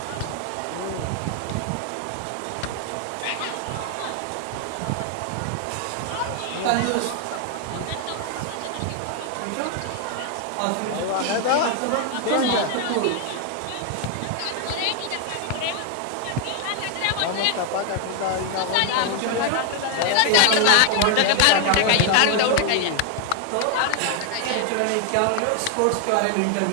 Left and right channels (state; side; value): different; both; correlation 0.00